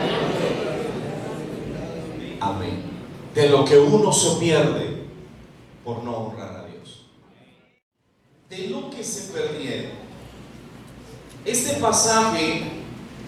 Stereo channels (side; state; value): both; identical; correlation 1.00